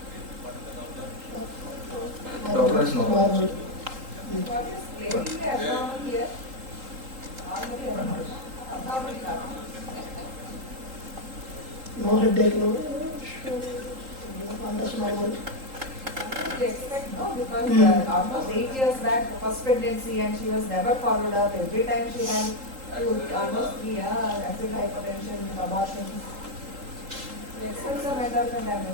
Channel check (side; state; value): left; late; 3.8 ms